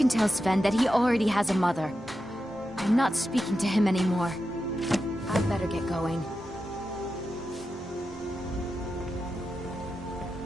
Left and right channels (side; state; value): both; normal; correlation 0.89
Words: tell Sven that he already has a mother. I'm not speaking to him anymore. I'd better get going.